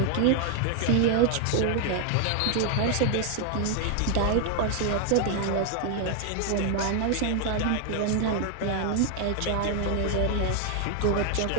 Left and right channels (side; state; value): both; different; correlation 0.00